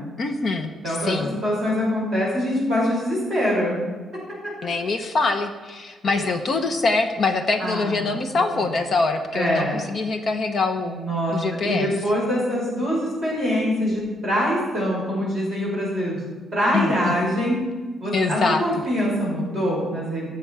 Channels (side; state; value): both; normal; correlation 0.74